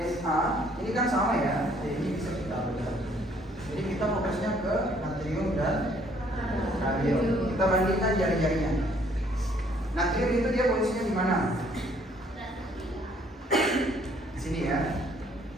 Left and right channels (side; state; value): both; normal; correlation 0.63